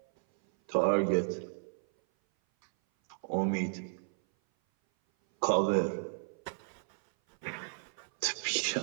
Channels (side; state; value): left; silent; 56 dB below the other